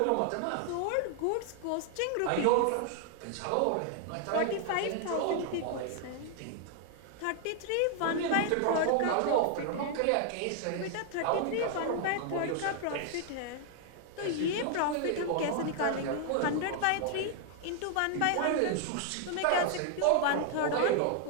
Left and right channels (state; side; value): different; both; correlation 0.00